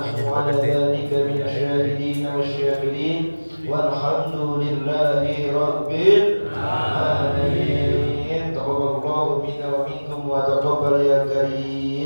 'ala dhalika minasyahidin wasyakirin walhamdulillahi rabbil alamin. Taqabbalallahu minna wa minkum wa taqabbal ya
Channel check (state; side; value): inverted; both; correlation -1.00